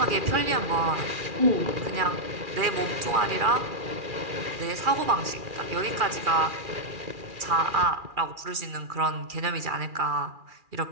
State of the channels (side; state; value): left; late; 2.4 ms